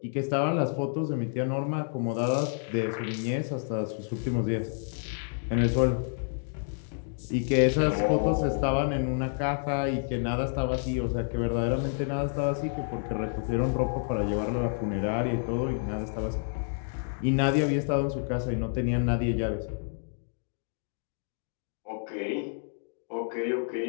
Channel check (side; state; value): right; silent; digital silence